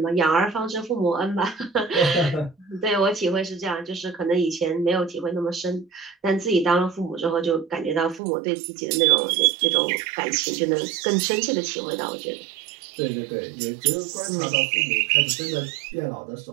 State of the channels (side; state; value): left; drops out; at 8.2 s